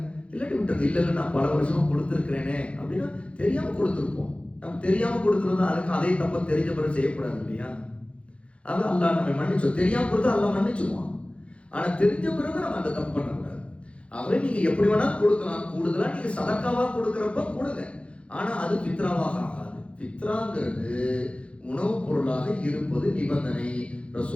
இல்லாட்டி விட்டுருங்க. இல்ல நான் பல வருஷமா கொடுத்துருக்கிறேனே அப்படின்னா தெரியாம கொடுத்துருப்போம். நம்ம தெரியாம கொடுத்துருந்தா அதுக்கு அதே தப்ப தெரிஞ்ச பிறகு செய்யக்கூடாது இல்லையா? அது அல்லாஹ் நம்ம மன்னிச்சோம். தெரியாம கொடுத்தா அல்லாஹ் மன்னிச்சுவான். ஆனா தெரிஞ்ச பிறகு நம்ம அந்த தப்பு பண்ணக்கூடாது. ஆகவே நீங்க எப்படி வேணா கொடுக்கலாம், கூடுதலா நீங்க சதக்காவா கொடுக்கறப்ப கொடுங்க, ஆனா அது ஃபித்ராவாக ஆகாது. ஃபித்ராங்கிறது உணவுப் பொருளாக இருப்பது நிபந்தனை.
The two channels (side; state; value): right; late; 0.060 ms